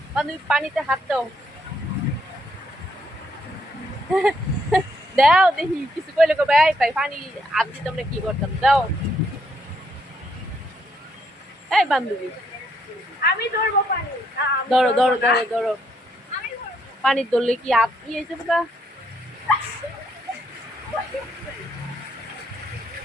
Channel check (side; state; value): both; normal; correlation 0.73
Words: বান্ধবী পানিতে হাত দাও, দাও দেখি কিছু কইলে কবে আই পাই পানি হাত দিতাম না কি করতাম, দাও। এই বান্ধবী আমি ধরবো পানি, ধরো ধরো ধরো ধরো, পানি ধরলে কি হাত ইয়ে যাবে না?